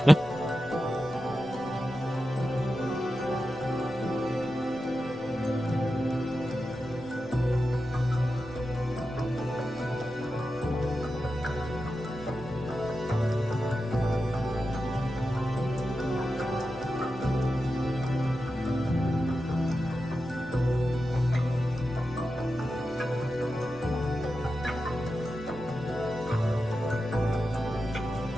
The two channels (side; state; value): left; noise; rumble, 21 dB below the sound